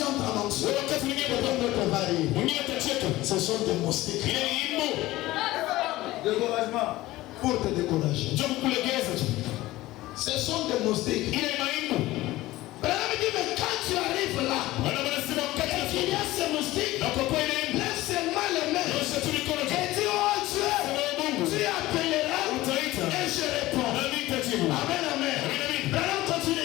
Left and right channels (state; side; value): quieter; right; 17.6 dB